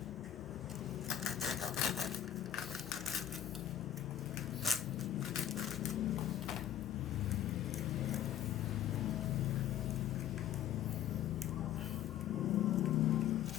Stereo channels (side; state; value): right; quieter; 11.3 dB